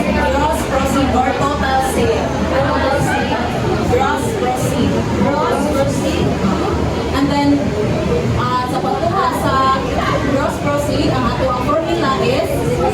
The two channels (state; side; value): identical; both; correlation 1.00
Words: gross proceed or total sale. Gross proceed. Gross proceed. And then, sa pagkuha sa gross proceed, ang ato ang formula is